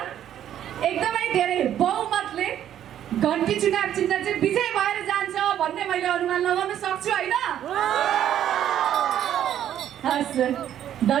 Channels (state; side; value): quieter; left; 10.7 dB